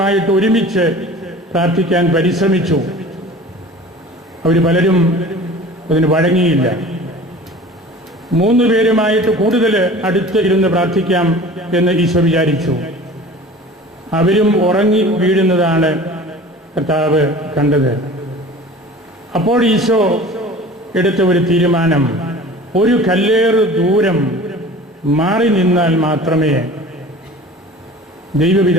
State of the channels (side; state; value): both; normal; correlation 0.41